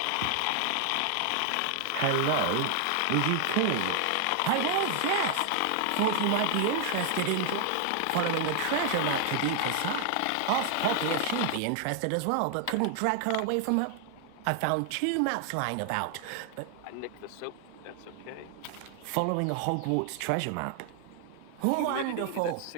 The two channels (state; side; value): different; both; correlation 0.00